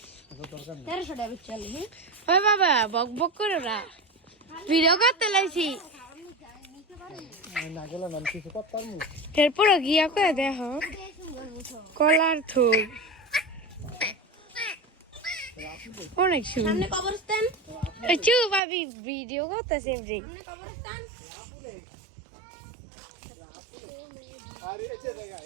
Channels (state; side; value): drops out; left; at 18.6 s